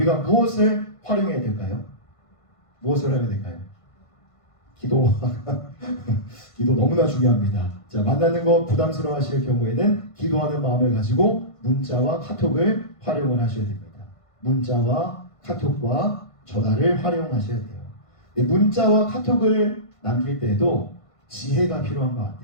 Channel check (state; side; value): late; right; 1.5 ms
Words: 무엇을 활용해야 될까요? 무엇을 해야 될까요? 기도. 기도 너무나 중요합니다. 자, 만나는 거 부담스러워 하실 경우에는 기도하는 마음을 가지고 문자와 카톡을 활용을 하셔야 됩니다. 문자와 카톡과 전화를 활용하셔야 돼요. 문자와 카톡을 남길 때에도 지혜가 필요한 것